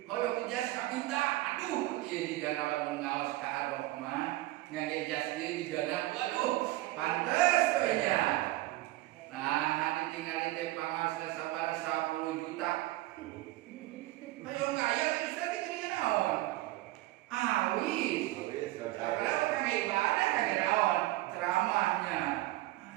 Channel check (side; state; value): left; quieter; 17.8 dB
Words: hoyong jas kapita aduh ieu digana lamun ngaos ka Ar-Rahman ngangge jas ieu digana waduh pantes we nya nah ditinggali teh pangaos sabaraha 10 juta hoyong aya geus teh geuningan naon awis kalau kangge ibadah kangge naon ceramahnya